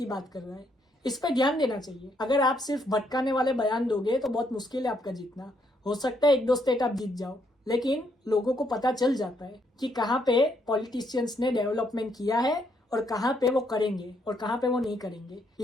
बात कर रहा है। इस पे ध्यान देना चाहिए। अगर आप सिर्फ भटकाने वाले बयान दोगे तो बहुत मुश्किल है आपका जीतना। हो सकता है 1-2 स्टेट आप जीत जाओ, लेकिन लोगों को पता चल जाता है कि कहाँ पे पॉलिटिशियंस ने डेवलपमेंट किया है और कहाँ पे वो करेंगे और कहाँ पे वो नहीं करेंगे।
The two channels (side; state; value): both; normal; correlation 0.73